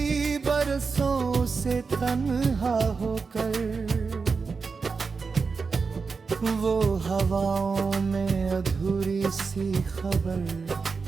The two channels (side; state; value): left; quieter; 4.8 dB